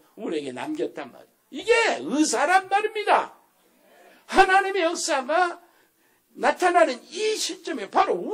우리에게 남겼단 말이에요. 이게 의사란 말입니다. 하나님의 역사가 나타나는 이 시점에 바로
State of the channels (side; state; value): both; identical; correlation 1.00